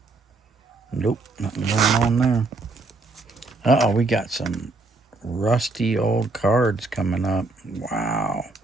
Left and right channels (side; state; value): left; quieter; 3.4 dB